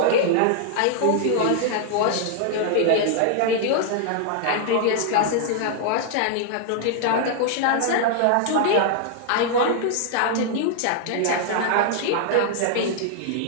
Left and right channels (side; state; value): both; different; correlation 0.00